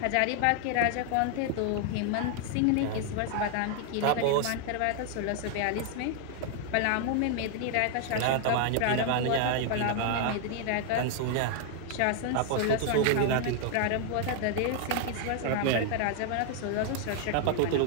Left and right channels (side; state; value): both; different; correlation 0.00